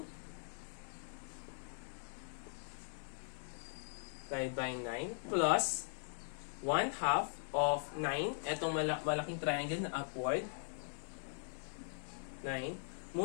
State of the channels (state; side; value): silent; right; digital silence